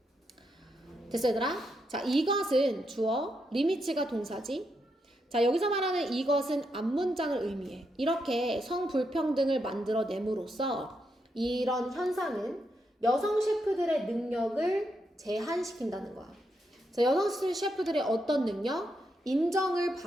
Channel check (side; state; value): both; normal; correlation 0.82